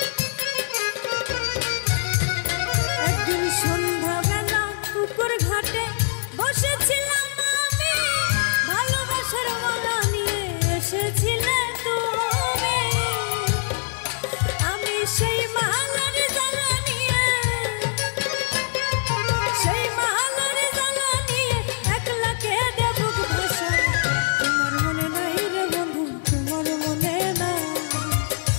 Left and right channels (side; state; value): right; silent; digital silence